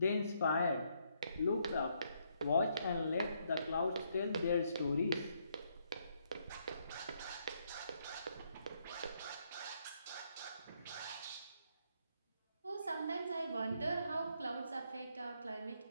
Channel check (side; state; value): both; inverted; correlation -0.73